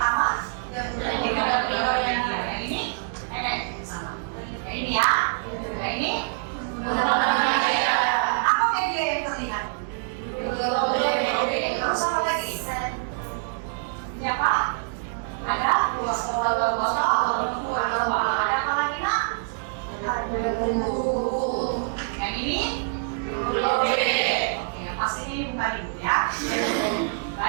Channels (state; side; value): silent; left; digital silence